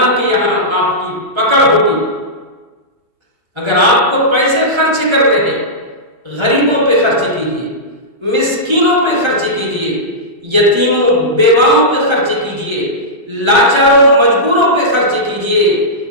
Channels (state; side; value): late; left; 1.3 ms